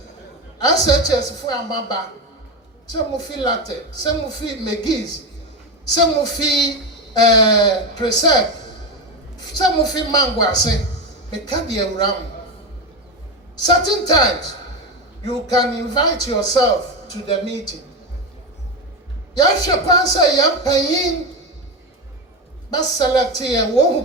SHS for amaba. Some of you latte, some of you McGee's, some of you Preserve, some of you Manguase, meka the wura. Certain times you can invite yourself to the meeting. Yasha kwansa yampayin ba select here who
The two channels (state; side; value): normal; both; correlation 0.16